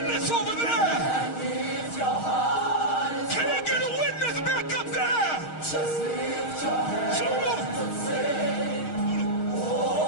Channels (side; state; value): right; late; 6.4 ms